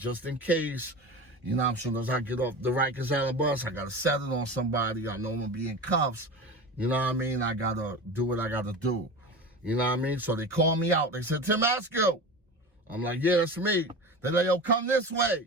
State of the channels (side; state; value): both; normal; correlation 0.30